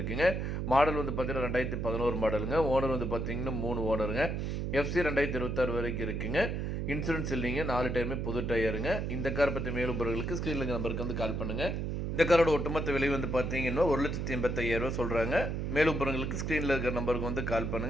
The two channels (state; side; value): noise; right; hum, 2 dB below the sound